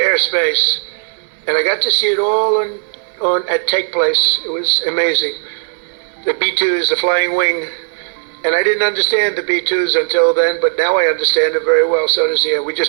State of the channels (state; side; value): silent; left; digital silence